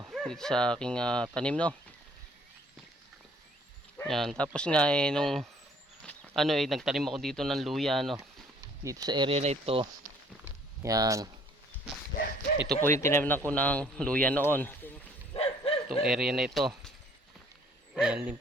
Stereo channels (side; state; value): both; normal; correlation 0.59